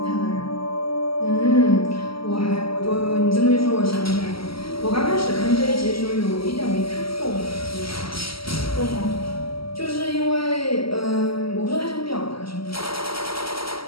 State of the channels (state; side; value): late; right; 0.75 ms